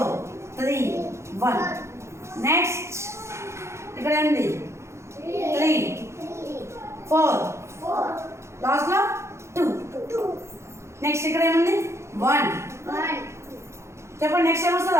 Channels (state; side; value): late; left; 0.13 ms